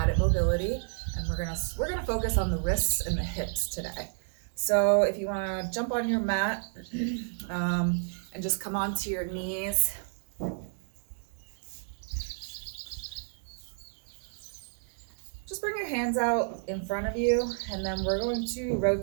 mobility, and we're gonna focus on the wrists and the hips today. So if you want to jump on your mat and just come onto your knees. Just bring your hands out in front of you, and then we're going to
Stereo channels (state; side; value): silent; left; digital silence